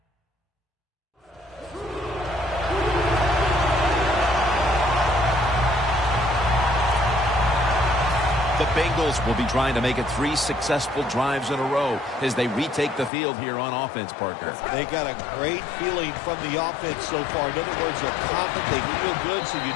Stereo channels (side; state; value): right; drops out; at 13.1 s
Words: The Bengals will be trying to make it 3 successful drives in a row as they retake the field here on offense, partner. They got a great feeling from the offense so far. In other words, they're confident, they feel good, so you